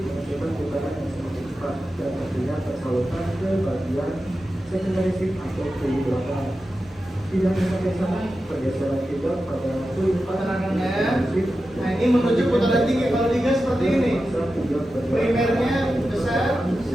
menghasilkan putaran yang semakin cepat dan tentunya tersalurkan ke bagian secondary shift atau kulit belakang. Tidak hanya sampai sana, pergeseran juga pada kulit Putarannya. Nah, ini menuju putaran tinggi. Kalau digas seperti ini, primernya besar,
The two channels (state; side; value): normal; both; correlation 0.92